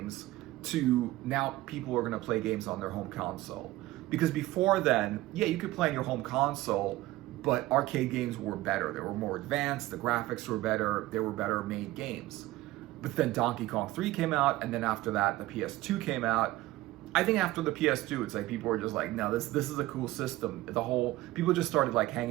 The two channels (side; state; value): left; quieter; 17.5 dB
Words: to now people are going to play games on their home console. Because before then, yeah, you could play on your home console, but arcade games were better. They were more advanced, the graphics were better, they were better made games. But then Donkey Kong 3 came out, and then after that, the PS2 came out. I think after the PS2, it's like people were just like, no, this is a cool system. People just started like